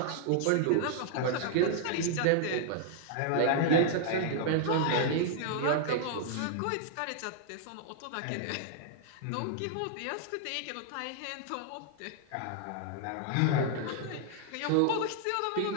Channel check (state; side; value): different; both; correlation 0.00